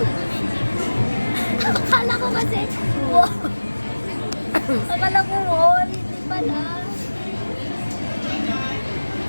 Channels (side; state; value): both; inverted; correlation -1.00